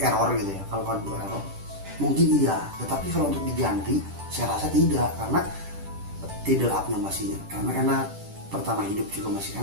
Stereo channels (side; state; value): left; late; 10 ms